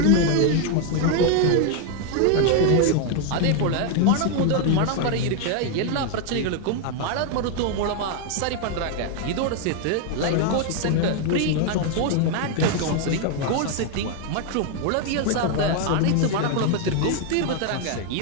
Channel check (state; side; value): different; both; correlation 0.01